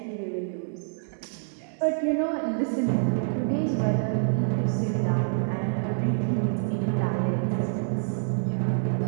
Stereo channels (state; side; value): silent; left; 58 dB below the other